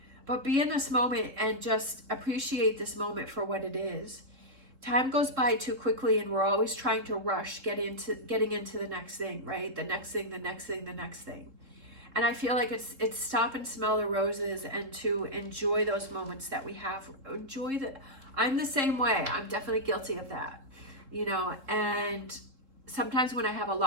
But be in this moment and just appreciate this moment for what it is. Time goes by too quickly, and we're always trying to rush getting into the next thing, right? The next thing, the next thing, the next thing. And I feel like it's stop and smell the roses and to enjoy those moments that we have. I'm the same way. I'm definitely guilty of that, you know. And sometimes when I have a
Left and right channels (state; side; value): late; left; 3.7 ms